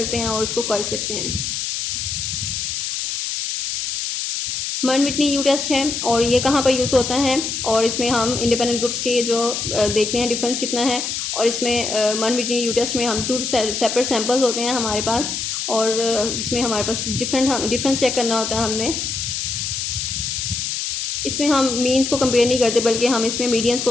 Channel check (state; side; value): noise; left; hiss, 3 dB below the sound